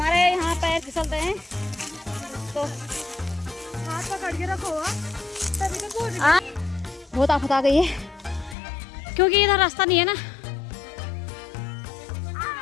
यहाँ पैर फिसलते हैं तो हाथ पकड़ के रखो। बहुत आफत आ गई है क्योंकि इधर रास्ता नहीं है ना।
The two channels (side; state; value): right; drops out; at 8.6 s